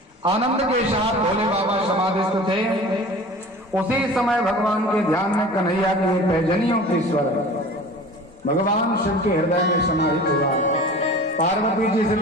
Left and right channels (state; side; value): normal; both; correlation 0.40